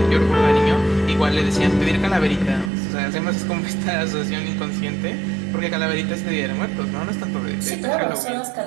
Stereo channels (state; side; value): drops out; left; at 2.7 s